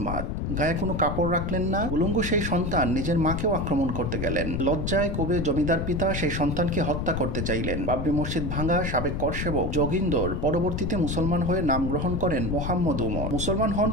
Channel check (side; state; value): left; noise; rumble, 2 dB below the sound